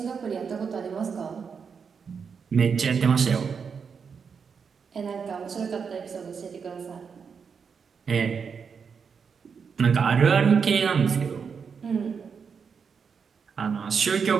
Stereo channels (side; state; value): left; quieter; 6.1 dB